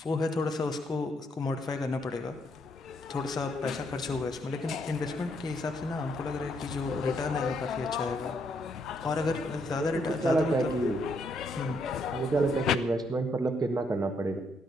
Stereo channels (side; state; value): both; normal; correlation 0.74